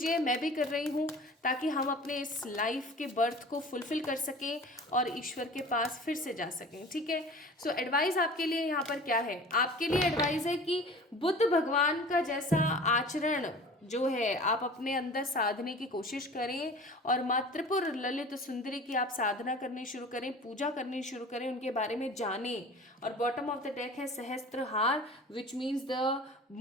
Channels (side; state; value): both; normal; correlation 0.41